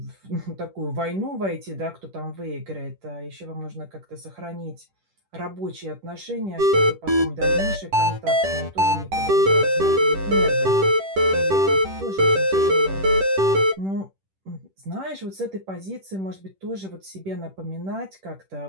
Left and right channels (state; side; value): late; left; 10 ms